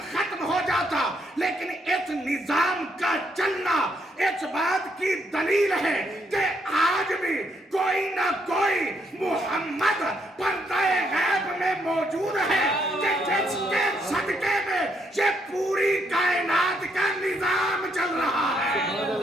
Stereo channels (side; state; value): both; normal; correlation 0.74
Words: खत्म हो जाता, लेकिन इस निजाम का चलना इस बात की दलील है कि आज भी कोई ना कोई मोहम्मद पर्दाए गैब में मौजूद है, कि जिसके सदके में ये पूरी कायनात का निजाम चल रहा है।